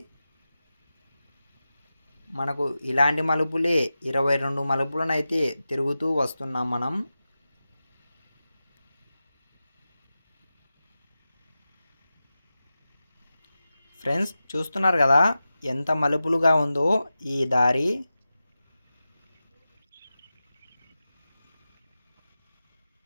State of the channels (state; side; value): inverted; both; correlation -0.94